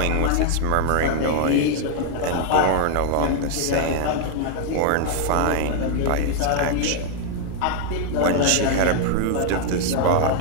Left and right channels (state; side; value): different; both; correlation 0.00